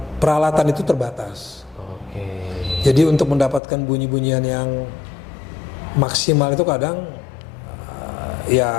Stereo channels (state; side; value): drops out; right; at 3.6 s